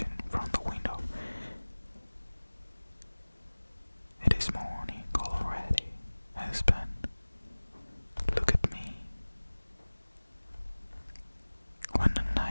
from the window. It is morning already, husband. Look at me. When the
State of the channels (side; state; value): both; inverted; correlation -1.00